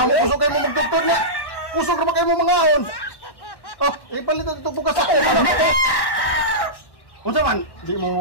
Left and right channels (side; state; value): right; late; 1.1 ms